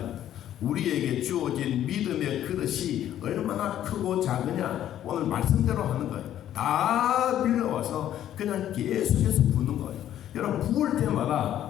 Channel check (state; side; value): quieter; right; 11.6 dB